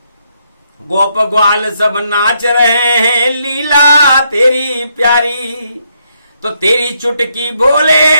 गोप ग्वाल सब नाच रहे हैं लीला तेरी प्यारी। तो तेरी चुटकी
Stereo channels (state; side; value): inverted; both; correlation -0.75